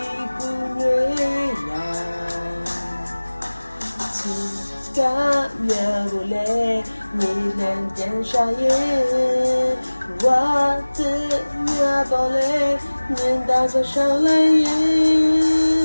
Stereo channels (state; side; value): inverted; both; correlation -1.00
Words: ပူနွေးလာချစ်ကမြာကိုလေမြေလန်းပြန်ရှာရဲ့ဝါတဲ့မြာပေါ်လေမြင်တာဆိုရှောင်းလိုက်ရဲ့